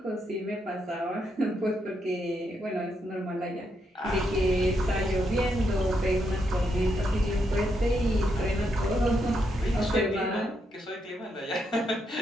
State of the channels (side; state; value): both; normal; correlation 0.79